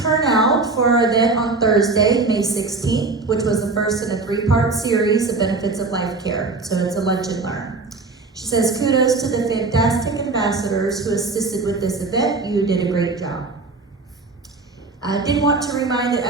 turnout for our event on Thursday, May 16th, which was the first in a 3-part series of Benefits of Life Care. So it's a lunch and learn. She says, kudos to the fantastic ambassadors who assisted with this event. You did a great job. I did want to remind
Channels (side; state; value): left; quieter; 3.8 dB